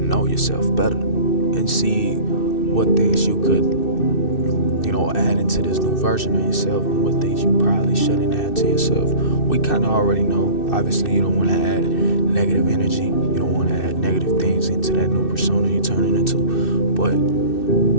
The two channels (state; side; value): late; right; 2.6 ms